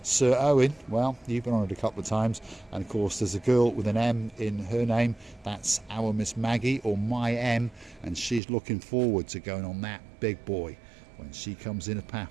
Sir Owen. Well, you've been on it a couple of times. And of course there's a girl with an M in her name. That's our Miss Maggie, or My M, and she's looking forward to going on that big boy when she comes in a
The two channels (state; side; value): drops out; left; at 8.4 s